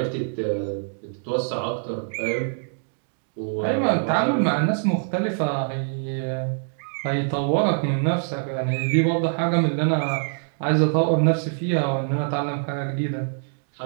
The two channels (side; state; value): left; silent; digital silence